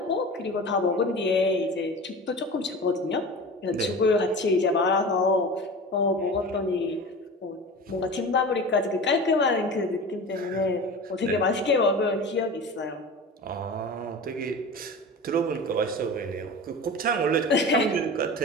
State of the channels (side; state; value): both; normal; correlation 0.33